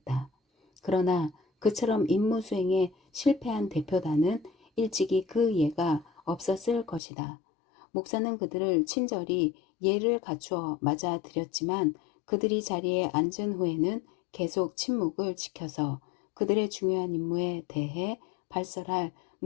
그러나 그처럼 임무 수행에 실패한 대표단은 일찍이 그 예가 없었을 것이다. 목사는 그들을 친절히 예를 갖추어 맞아들였지만 그들이 자리에 앉은 후에는 계속 침묵을 지켜서 그들의 중요한 임무에 대해 발설할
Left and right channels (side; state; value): right; drops out; at 7.0 s